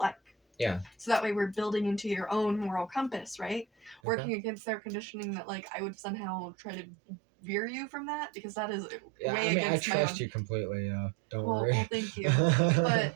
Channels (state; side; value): drops out; left; at 4.0 s